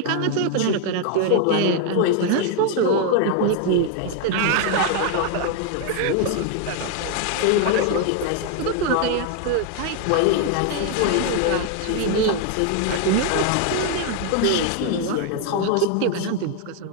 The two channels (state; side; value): different; both; correlation 0.00